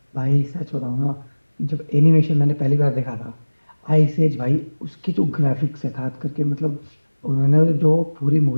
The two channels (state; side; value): inverted; both; correlation -1.00